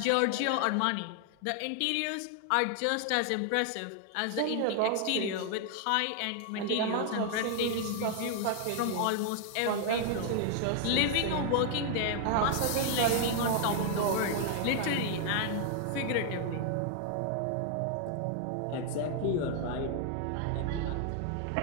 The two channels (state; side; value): different; both; correlation 0.00